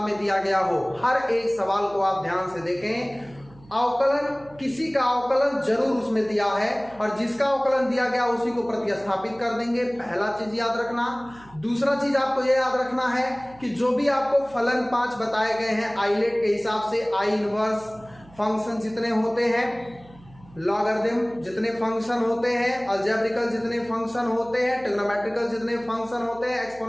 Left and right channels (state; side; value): noise; right; hum, 24 dB below the sound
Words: में दिया गया हो, हर एक सवाल को आप ध्यान से देखें। अवकलन, किसी का अवकलन जरूर उसमें दिया है और जिसका अवकलन दिया गया उसी को प्रतिस्थापित कर देंगे, पहला चीज याद रखना। दूसरा चीज आपको यह याद रखना है कि जो भी आपको फलन 5 बताए गए हैं आइलेट के हिसाब से, आई इनवर्स फंक्शन जितने होते हैं, लॉगरिथम जितने फंक्शन होते हैं, अलजेब्रिकल जितने फंक्शन होते हैं, ट्रिग्नोमेट्रिकल जितने फंक्शन होते हैं,